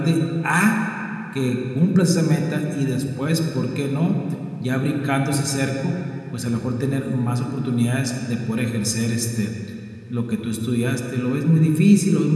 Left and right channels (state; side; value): identical; both; correlation 1.00